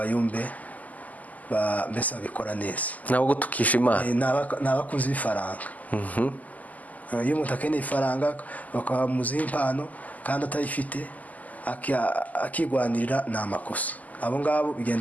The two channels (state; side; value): late; right; 0.078 ms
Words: mbese babikora neza, ntabwo tukisha Imana. ni abakunzi b'ifaranga. iyo umuntu akeneye ifaranga bakamuziha impano kandi atayifite akigwanirira, ni amakosa. abo ngabo